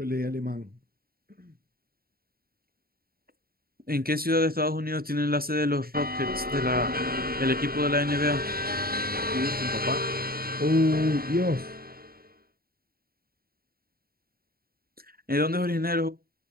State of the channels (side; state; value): left; late; 0.44 ms